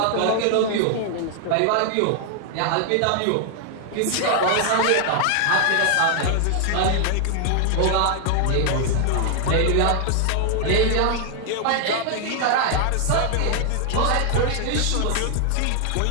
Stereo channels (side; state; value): both; different; correlation 0.00